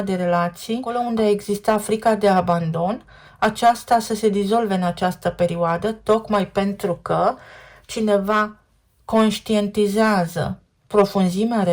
de relații, acolo unde exista frica de abandon, aceasta să se dizolve în această perioadă, tocmai pentru că cineva conștientizează profunzimea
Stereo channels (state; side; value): identical; both; correlation 1.00